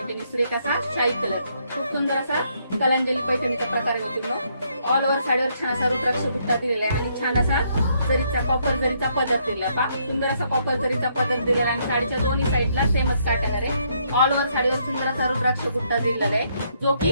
सुरेख असा शाही कलर, खूप सुंदर असा कलांजली पैठणीचा प्रकार आहे मैत्रिणी। ऑल ओव्हर साडीवर छान असा रुद्राक्ष बुट्टा दिलेला आहे आणि छान असा जरीचा कॉपर जरीचा पदर दिलेला पा, सुंदर असा कॉपर जरीचा पदर दिलेला आणि साडीच्या दोन्ही साईडला सेमच पॅटर्न आहे। ऑल ओव्हर साडीवर सुंदर असा रुद्राक्ष बुट्टा दिलेला आहे जो की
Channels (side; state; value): both; inverted; correlation -0.72